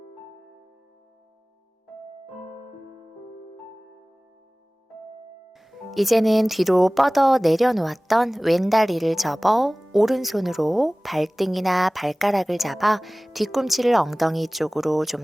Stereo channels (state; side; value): normal; both; correlation 0.98